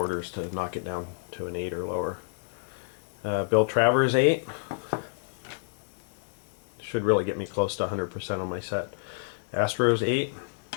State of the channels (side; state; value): right; silent; 59 dB below the other